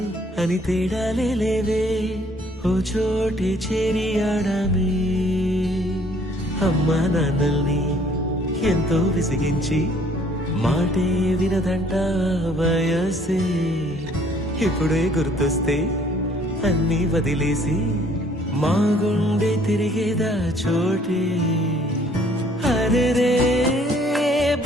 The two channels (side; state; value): both; normal; correlation 0.60